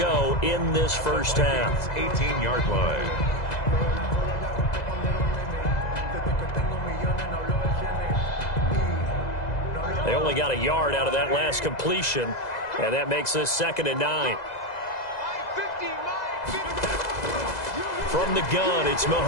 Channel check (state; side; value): late; right; 2.0 ms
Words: in this first half. 18-yard line. They only got a yard out of that last completion, and that makes this 2nd and 9. From the gun, it's